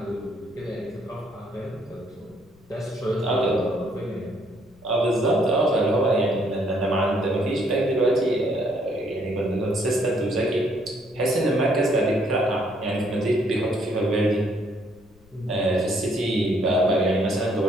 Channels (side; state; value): left; noise; rumble, 28 dB below the sound